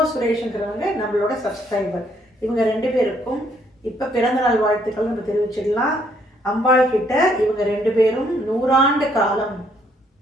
சுரேஷ்ங்கிறவங்க நம்மளோட சப்ஸ்கிரைபர். இவங்க ரெண்டு பேருக்கும் இப்ப பிறந்த நாள் வாழ்த்துக்கள் நம்ம தெரிவிச்சிடலாம். அம்பாள் கிட்ட இவங்க ரெண்டு பேரும் 100 ஆண்டு காலம்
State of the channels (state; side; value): normal; both; correlation 0.68